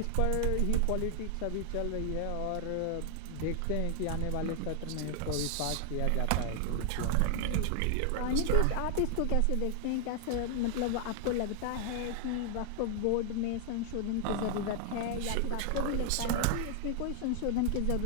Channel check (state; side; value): different; both; correlation 0.00